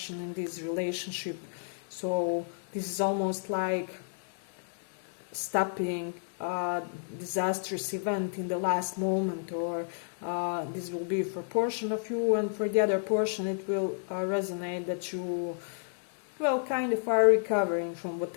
in this relationship. So this is almost like stopping a disastrous event in the last moment, or this will be for a portion of you, and for the other portion it will resonate that you, well, kind of are recovering from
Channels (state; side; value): silent; right; digital silence